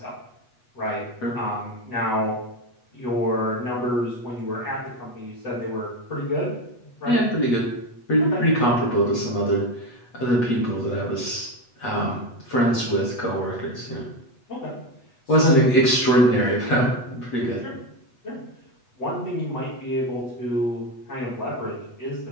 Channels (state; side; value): late; right; 8.2 ms